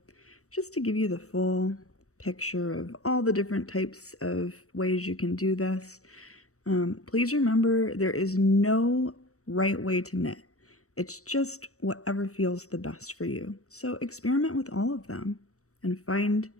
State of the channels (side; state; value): right; late; 0.65 ms